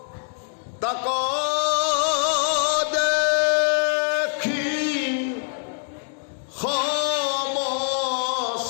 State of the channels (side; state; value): right; silent; 63 dB below the other